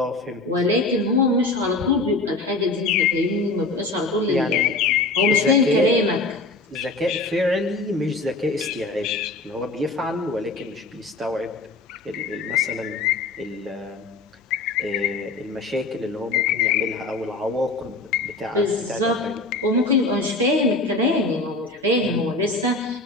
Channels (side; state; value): right; quieter; 3.2 dB